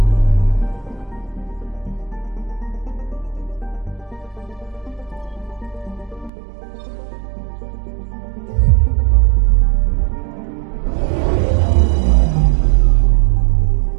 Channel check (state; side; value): drops out; left; at 6.3 s